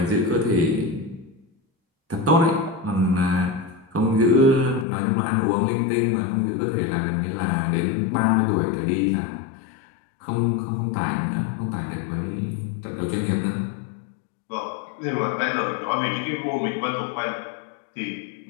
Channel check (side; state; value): right; drops out; at 4.9 s